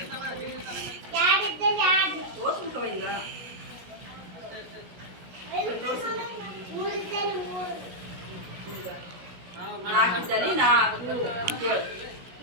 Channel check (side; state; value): left; late; 17 ms